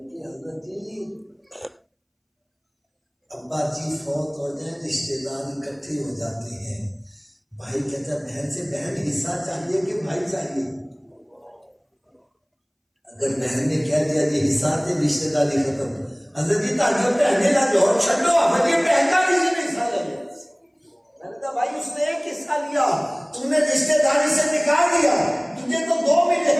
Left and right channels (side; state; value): both; identical; correlation 1.00